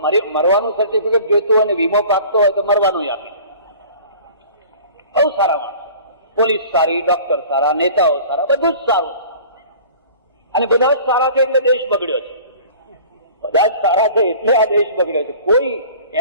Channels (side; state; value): both; inverted; correlation -0.45